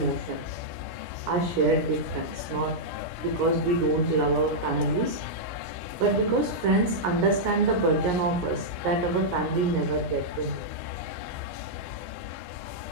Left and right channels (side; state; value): left; late; 17 ms